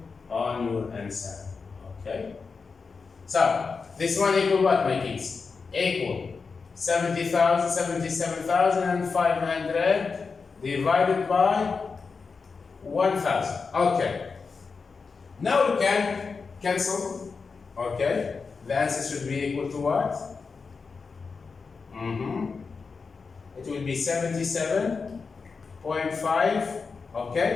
on your answer. Okay? So, this one equal what, my kids? Equal 77,500 divided by 1,000. Okay. Now we can cancel. Okay. The answer should be equal to what? It will be 77.5.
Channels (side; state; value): right; quieter; 4.9 dB